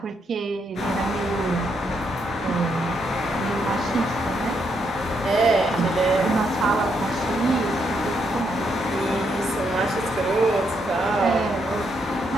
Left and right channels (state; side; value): normal; both; correlation 0.77